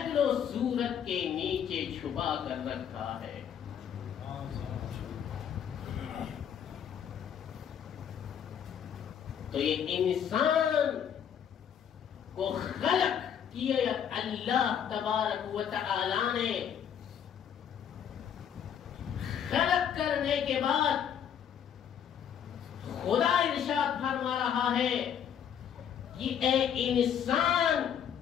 و صورت کے نیچے چھپا کر رکھا ہے. تو یہ انسان کو خلق کیا اللہ تبارک و تعالی نے. خلق کرنے کے بعد خدا ارشاد فرما رہا ہے کہ اے انسان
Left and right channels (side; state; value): right; quieter; 8.6 dB